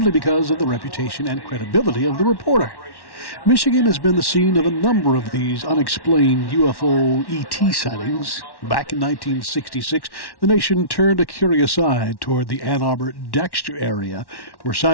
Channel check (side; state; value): right; late; 1.1 ms